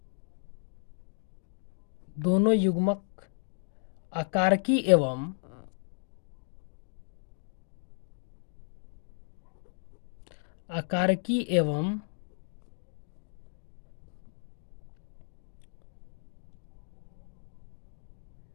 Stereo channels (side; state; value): right; silent; digital silence